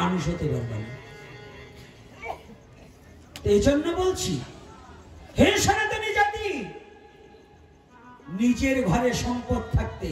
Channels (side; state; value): both; identical; correlation 1.00